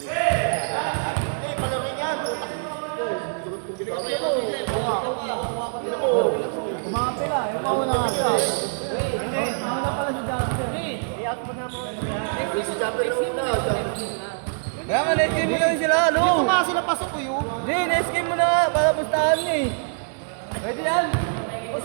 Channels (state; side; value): silent; left; 62 dB below the other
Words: Eh, palarin yan. Kumapit na. Yung mauna nga siya. Mauna pala si Jasper. Si Jumper na una. Kaya nga, na-escape mo lang sila, ano? Dito nga sila pasok ko yun. Hindi, na-escape mo na nga, para pustahan niya eh. Pwede yan. O